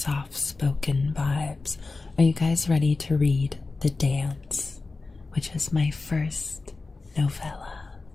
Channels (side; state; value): right; quieter; 3.7 dB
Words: vibes. Are you guys ready to read The Dance, which is my first novella?